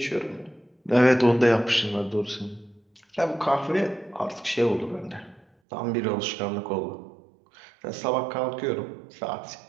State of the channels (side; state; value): left; drops out; at 5.5 s